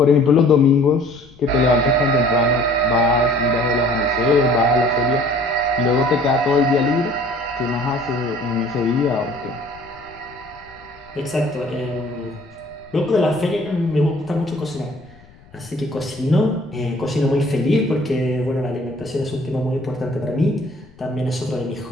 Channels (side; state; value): left; noise; rumble, 25 dB below the sound